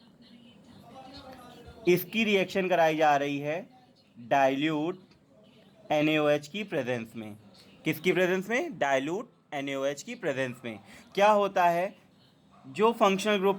इसकी रिएक्शन कराई जा रही है डाइल्यूट NaOH की प्रेजेंस में. किसकी प्रेजेंस में? डाइल्यूट NaOH की प्रेजेंस में. क्या होता है? जो फंक्शनल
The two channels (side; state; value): both; identical; correlation 1.00